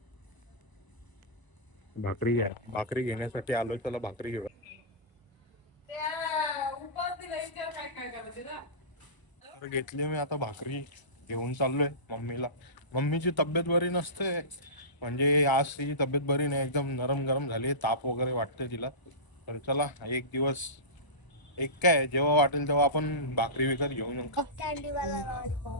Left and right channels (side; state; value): right; late; 1.0 ms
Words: भाकरी घेण्यासाठी आलोय. त्याला भाकरी घेऊन तर घेतली मी. आता भाकरी घेऊन चाललोय मम्मीला. मम्मीची तब्येत बरी नसते, म्हणजे आज तिची तब्येत बरी नाही, एकदम नरम गरम झाली, ताप वगैरे वाटते तिला. तर चला एक दिवस एक काय जेव्हा वाटेल तेव्हा आपण भाकरी विकत घेऊन येऊ का. कॅन्डीवाला